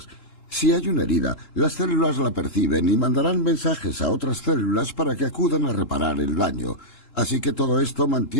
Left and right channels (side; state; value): right; late; 3.7 ms